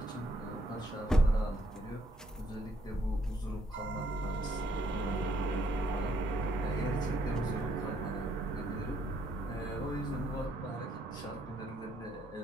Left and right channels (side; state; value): both; normal; correlation 0.71